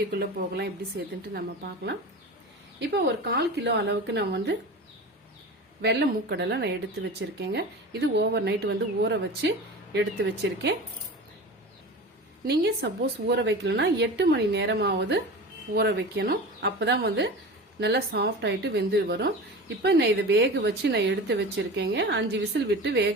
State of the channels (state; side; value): normal; both; correlation 0.32